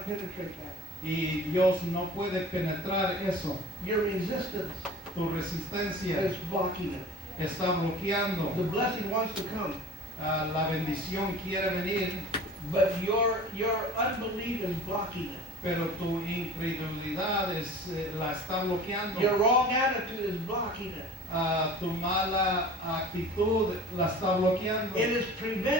penetrate that. Y Dios no puede penetrar eso. Your resistance Tu resistencia is blocking it. está bloqueando. The blessing wants to come, La bendición quiere venir, but your unbelief is blocking it. pero tu incredulidad la está bloqueando. Your wrong attitude is blocking it. Tu mala actitud la está bloqueando. It is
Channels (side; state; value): both; normal; correlation 0.42